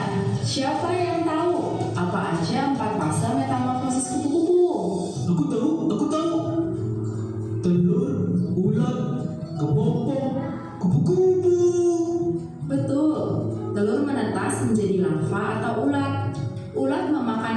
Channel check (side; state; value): both; identical; correlation 1.00